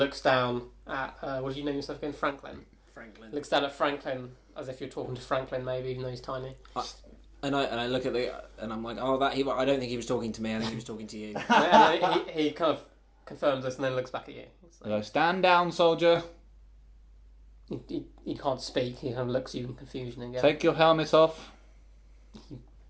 down at what did you name yourself again? Franklin. Looks down at Franklin as if you're talking to Franklin, maybe even though he's tiny. And I look at and I'm like, I don't think he was talking to me. I think he was talking to you. And he kind of confirms this and then looks back at you. I go, stand down, soldier. He can't speak. He kind of looks at you in confusion again. Take your helmet off. He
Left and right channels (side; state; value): both; identical; correlation 1.00